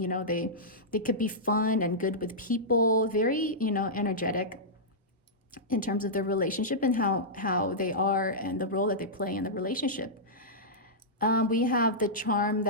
they could be fun and good with people, very, energetic in terms of their relationship and how they are and the role that they play in the relationship. We have the charm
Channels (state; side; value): normal; both; correlation -0.13